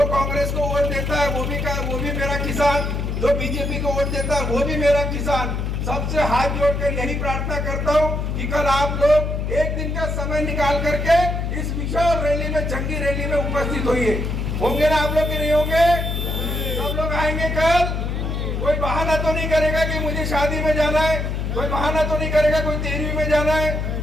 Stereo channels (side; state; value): left; noise; hum, 2 dB below the sound